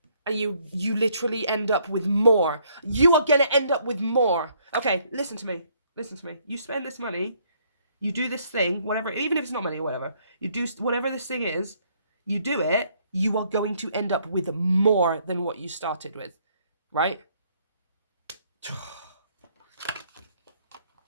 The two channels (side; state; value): both; inverted; correlation -0.67